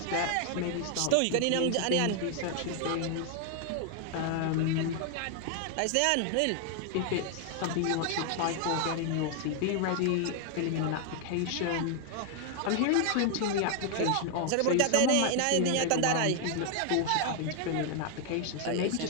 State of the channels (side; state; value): both; different; correlation 0.00